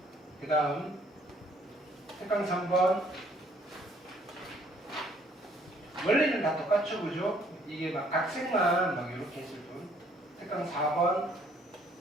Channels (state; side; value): normal; both; correlation 0.62